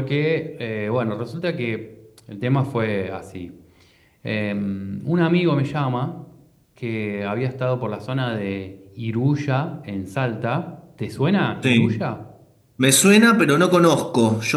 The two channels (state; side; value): identical; both; correlation 1.00